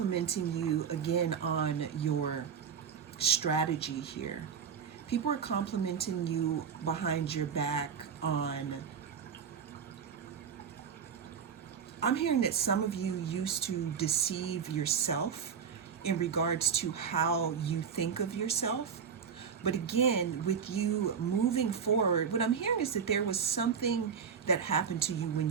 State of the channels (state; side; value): quieter; left; 6.9 dB